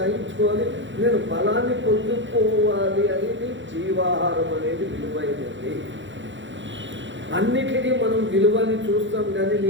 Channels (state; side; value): late; left; 0.54 ms